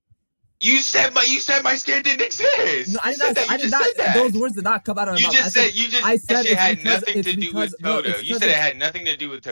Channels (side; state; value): both; inverted; correlation -1.00